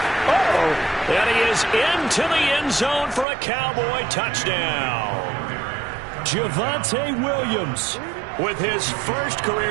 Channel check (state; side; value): drops out; left; at 3.2 s